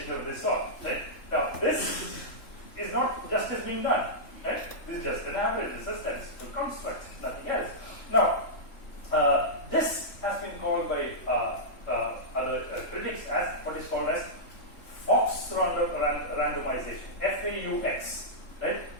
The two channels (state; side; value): late; right; 3.4 ms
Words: of this sort. Right? Now, this is not justice being done. Right? This is just an average. This is a statistical construct, nothing else. Now, this has been called by other critics as what is called as Fox randomization, FAUX, right?